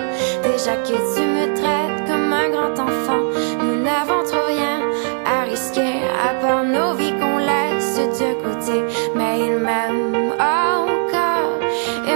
Déjà que tu me traites comme un grand enfant, nous n'avons trop rien à risquer à part nos vies qu'on laisse de côté. Mais il m'aime encore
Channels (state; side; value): silent; left; 60 dB below the other